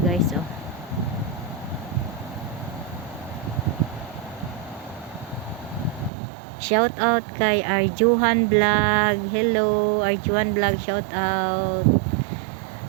oh. Shout out kay Arjuhan Vlog. Hello Arjuhan Vlog, shout out.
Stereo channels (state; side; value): drops out; left; at 6.1 s